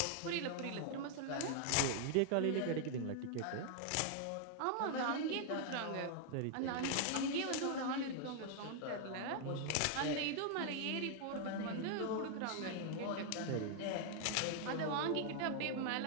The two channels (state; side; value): different; both; correlation 0.00